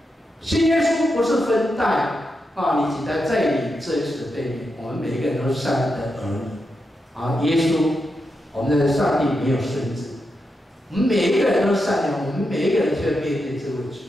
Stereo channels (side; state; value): both; normal; correlation 0.86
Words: 信耶稣不是分代你几代，在你这一世的背面，我们每一个人都是上帝的儿女耶稣，我们的上帝没有孙子，我们每一个人都是善良，我们每一个人就要面对这位